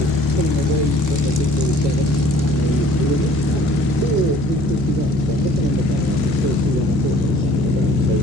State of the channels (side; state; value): both; normal; correlation 0.53